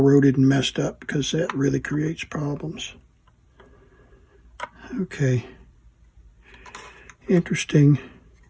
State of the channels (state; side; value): identical; both; correlation 1.00